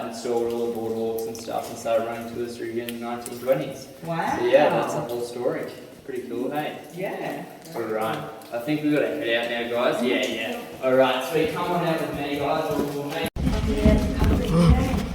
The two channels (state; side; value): identical; both; correlation 1.00